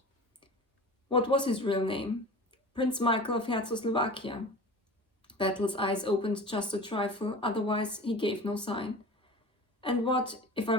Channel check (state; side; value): normal; both; correlation 0.36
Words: "What was his real name?" "Prince Michael of Czechoslovakia." Battle's eyes opened just a trifle, otherwise he gave no sign. "And what, if I